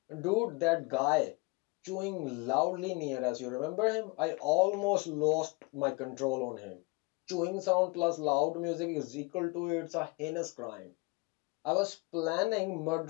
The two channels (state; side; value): quieter; right; 27.3 dB